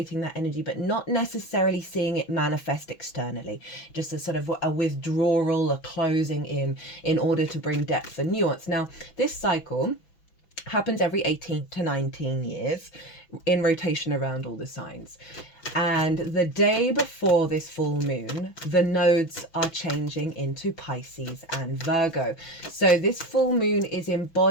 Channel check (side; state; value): right; late; 6.0 ms